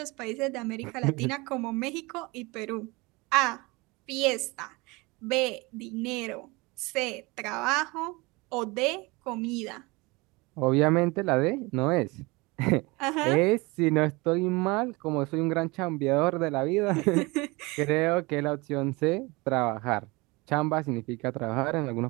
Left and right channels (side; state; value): left; quieter; 24.8 dB